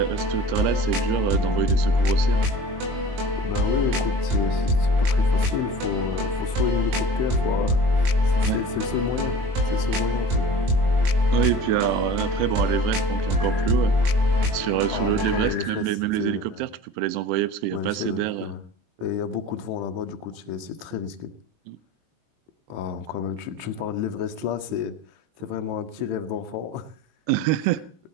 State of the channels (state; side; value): late; left; 21 ms